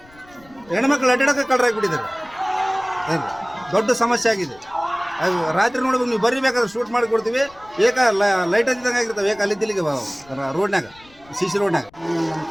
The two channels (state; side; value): noise; left; rumble, 26 dB below the sound